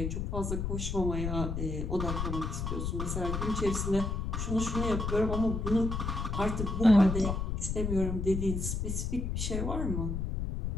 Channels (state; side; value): noise; left; rumble, 2 dB below the sound